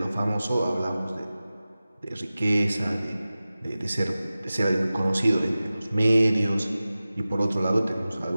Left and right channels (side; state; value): both; inverted; correlation -0.96